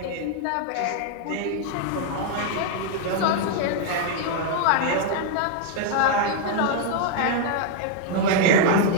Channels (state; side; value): different; both; correlation 0.00